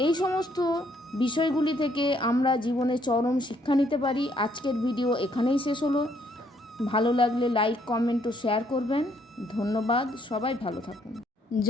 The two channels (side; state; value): both; normal; correlation 0.69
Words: এই সমস্ত বিষয়গুলি থেকে আমরা জীবনে চরম শিক্ষা নিতে পারি। আজকের ভিডিও এখানেই শেষ হলো। ভালো লাগলে লাইক, কমেন্ট ও শেয়ার করবেন। ধন্যবাদ। সবাই ভালো থাকুন।